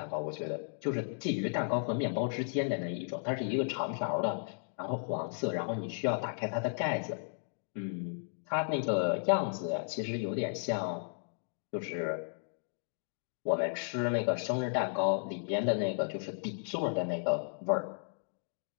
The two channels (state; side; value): silent; right; digital silence